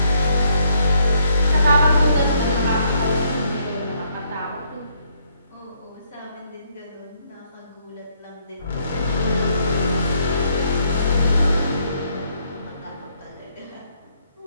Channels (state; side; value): inverted; both; correlation -0.71